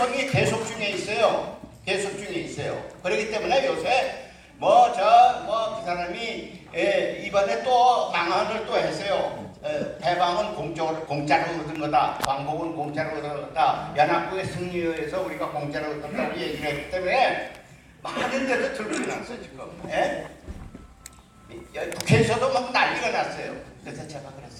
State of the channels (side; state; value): both; identical; correlation 1.00